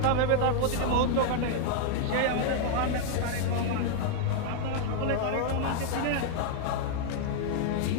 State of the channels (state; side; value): different; both; correlation 0.00